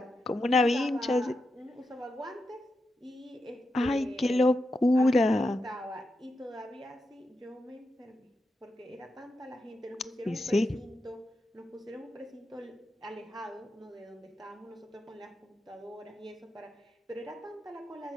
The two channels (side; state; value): both; normal; correlation 0.87